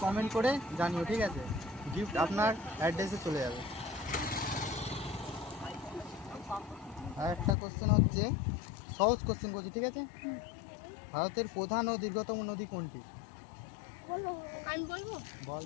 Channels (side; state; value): right; drops out; at 7.6 s